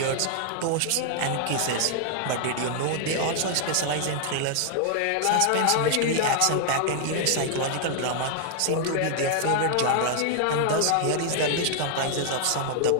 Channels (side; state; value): both; different; correlation 0.00